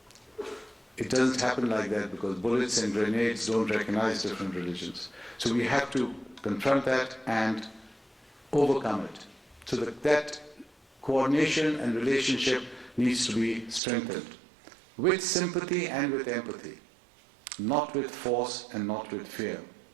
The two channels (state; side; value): drops out; left; at 13.8 s